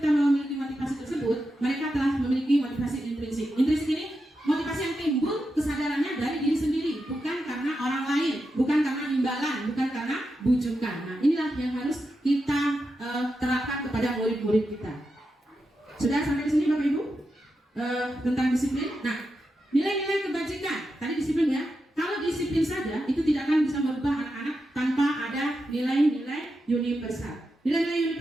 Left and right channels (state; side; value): normal; both; correlation 0.88